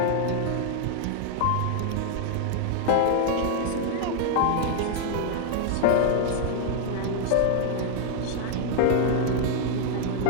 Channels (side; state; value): both; different; correlation 0.00